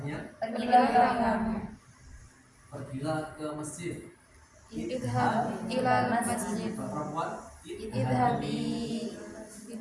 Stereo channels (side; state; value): both; identical; correlation 1.00